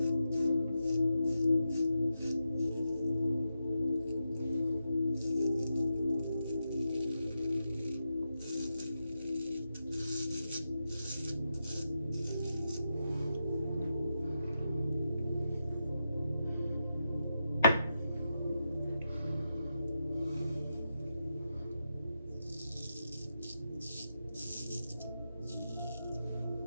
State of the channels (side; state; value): both; inverted; correlation -0.86